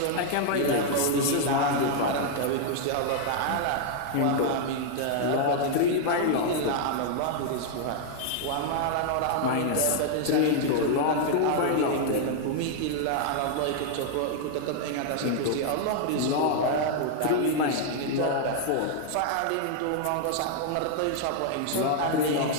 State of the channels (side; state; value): both; different; correlation 0.00